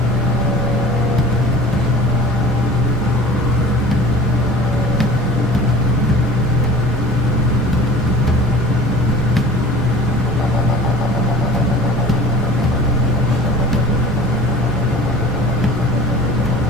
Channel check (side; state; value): both; normal; correlation 0.40